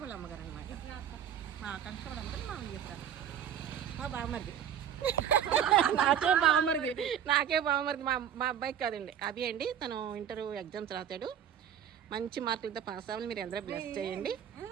వాళ్ళ అమ్మగారు అనమాట. మా ఆకాంక్ష వాళ్ళ అమ్మగారు మా విజయపురాలు. మా బావమరిది నాకే బావమరిది మా అబ్బాయికి కాదండి, అభి అండి. తను ఇంటర్ ఎగ్జామ్స్ రాశాడు. మంచి మార్కులతో పాస్ అవ్వాలి. మీరు అందరూ బ్లెస్ చేయండి.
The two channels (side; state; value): left; quieter; 9.3 dB